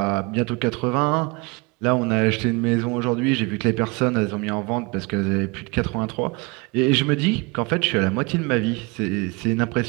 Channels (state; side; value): quieter; left; 28.0 dB